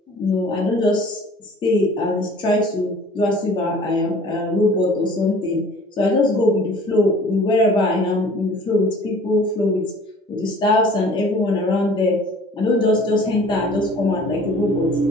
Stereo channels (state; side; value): normal; both; correlation 0.49